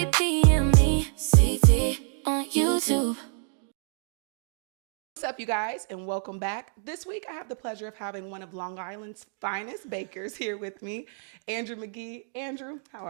p.m. CT on YouTube. What's up, you guys, and welcome back. This week, I have the pleasure of having one of Long Island's finest bakers here with me, Andrew McGee. Andrew, how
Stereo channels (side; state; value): left; silent; 60 dB below the other